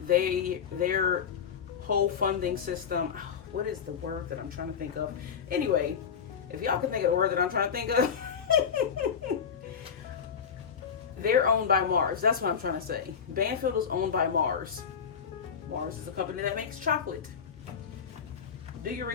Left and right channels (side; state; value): right; quieter; 7.1 dB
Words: their whole funding system, what is the word that I'm trying to think of? Anyway, if y'all can think of the word that I'm trying to think of, they're owned by Mars. That's what I'm trying to say. Banfield is owned by Mars. Mars is a company that makes chocolate. Do your